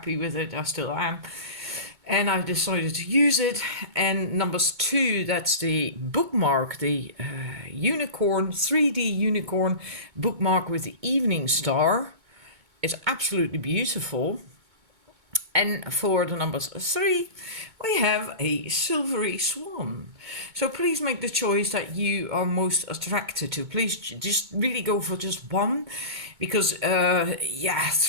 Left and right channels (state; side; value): late; left; 2.2 ms